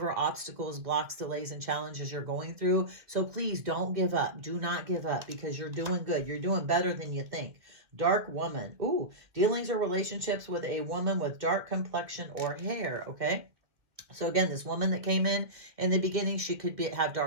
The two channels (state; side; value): late; left; 1.9 ms